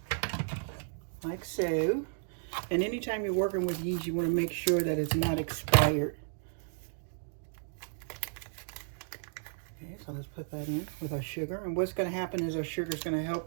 like so. And anytime you're working with yeast, you want to make sure that it's not expired. Okay, so let's put that in with our sugar. And what's going to happen is our sugar is going to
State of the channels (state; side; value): silent; left; digital silence